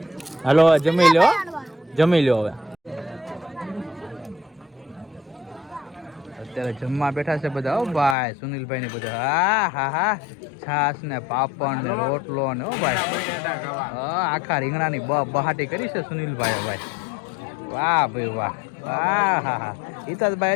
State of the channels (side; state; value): right; drops out; at 8.2 s